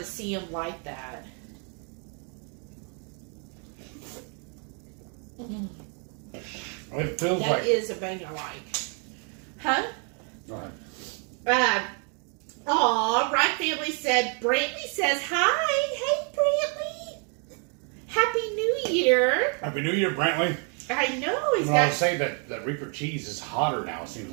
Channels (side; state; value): left; quieter; 39.0 dB